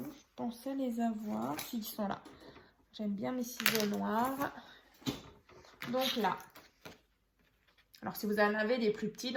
Je pensais les avoir. Si, ils sont là. J'aime bien mes ciseaux noirs. Donc là. Alors, si vous en avez des plus petits,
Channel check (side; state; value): both; identical; correlation 1.00